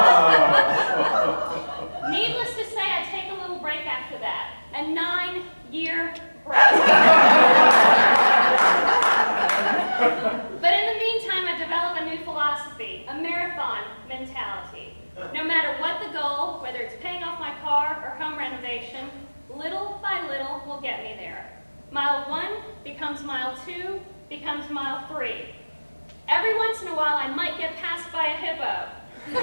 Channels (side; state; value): both; inverted; correlation -1.00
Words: Needless to say, I take a little break after that. A 9-year break. But in the meantime, I develop a new philosophy, a marathon mentality. No matter what the goal, whether it's paying off my car or home renovation, little by little will get me there. Mile 1 becomes mile 2, becomes mile 3. Every once in a while, I might get passed by a hippo.